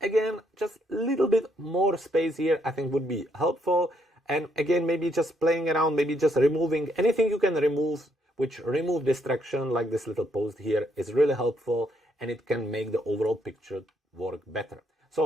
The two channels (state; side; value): normal; both; correlation 0.73